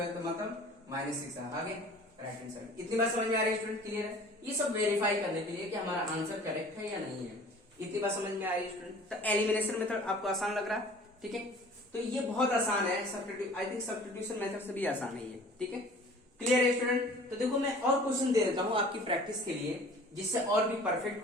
तो मतलब -6 आगे राइट हैंड साइड। इतनी बात समझ में आ रही है स्टूडेंट, क्लियर है। ये सब वेरीफाई करने के लिए कि हमारा आंसर करेक्ट है या नहीं है, इतनी बात समझ में आ रही है स्टूडेंट। तो एलिमिनेशन मेथड आपको आसान लग रहा है। ठीक है, तो ये बहुत आसान है, आई थिंक सब्स्टिट्यूशन मेथड से भी आसान है ये। ठीक है, क्लियर है स्टूडेंट। तो देखो मैं और क्वेश्चन दे देता हूँ आपकी प्रैक्टिस के लिए, जिससे और भी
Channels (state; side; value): normal; both; correlation 0.47